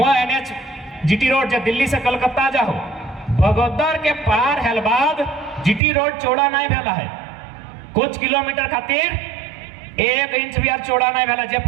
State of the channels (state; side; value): drops out; left; at 5.8 s